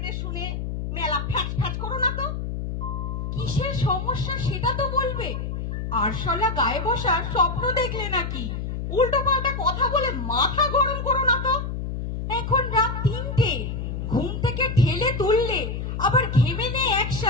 শুনে মেলা ফ্যাচ ফ্যাচ করো না তো। কিসের সমস্যা সেটা তো বলবে। আরশোলা গায়ে বসার স্বপ্ন দেখলে নাকি? উল্টো পাল্টা কথা বলে মাথা গরম করো না তো। এখন রাত 3টে, ঘুম থেকে ঠেলে তুললে আবার ঘেমে নেই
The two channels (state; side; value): noise; left; hum, 4 dB below the sound